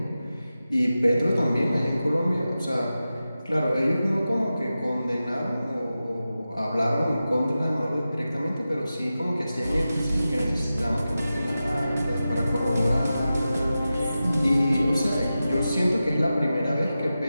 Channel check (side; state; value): both; inverted; correlation -0.93